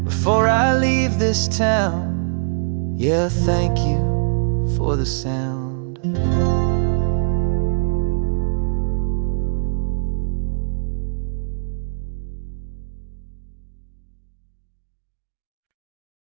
before I leave this town. Yeah, thank you for the sound.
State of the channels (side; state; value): left; silent; digital silence